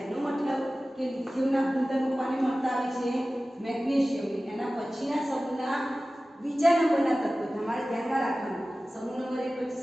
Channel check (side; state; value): both; normal; correlation 0.96